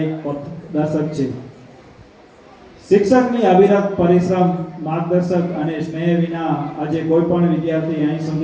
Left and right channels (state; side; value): identical; both; correlation 1.00